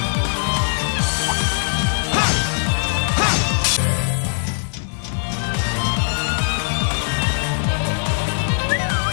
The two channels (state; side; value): silent; right; digital silence